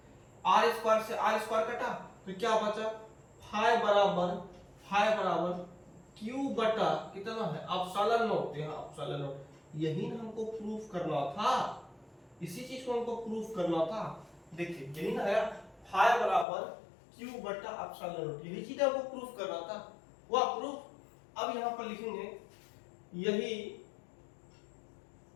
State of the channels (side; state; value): right; drops out; at 16.4 s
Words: r स्क्वायर से r स्क्वायर कटा, तो क्या बचा, फाइ बराबर q बटा कितना है, एप्सिलॉन नॉट। यहाँ एप्सिलॉन नॉट, यही ना हमको प्रूफ करना था, इसी चीज को हमको प्रूफ करना था। देखिए यही ना है, फाइ बराबर q बटा एप्सिलॉन नॉट, यही चीज हमको प्रूफ करना था, वह प्रूफ। अब यहाँ पर लिखेंगे यही